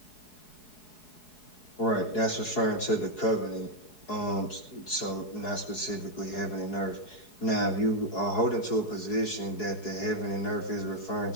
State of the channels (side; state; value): right; late; 4.7 ms